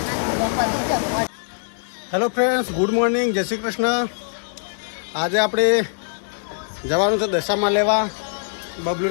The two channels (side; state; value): right; silent; digital silence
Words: હેલો ફ્રેન્ડ્સ, ગુડ મોર્નિંગ, જય શ્રી કૃષ્ણ. આજે આપણે જવાનું છે દશામાં લેવા.